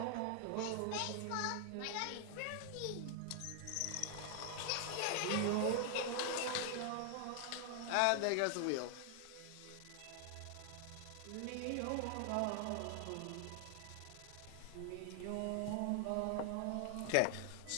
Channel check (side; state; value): both; different; correlation 0.00